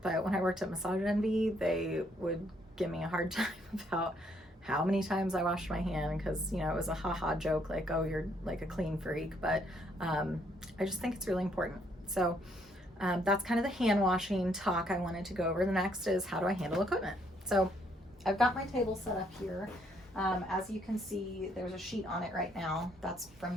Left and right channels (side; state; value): both; normal; correlation 0.70